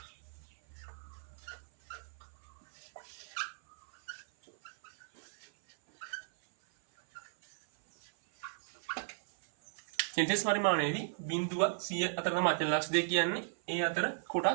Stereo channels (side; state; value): left; silent; 54 dB below the other